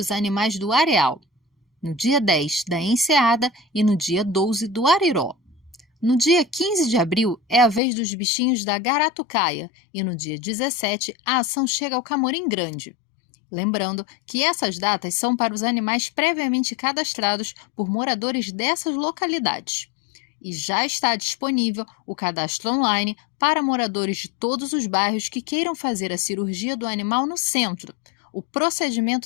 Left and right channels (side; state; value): right; drops out; at 7.8 s